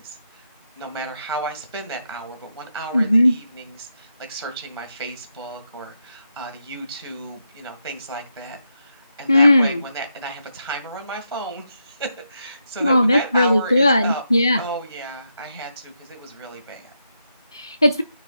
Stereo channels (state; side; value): inverted; both; correlation -0.83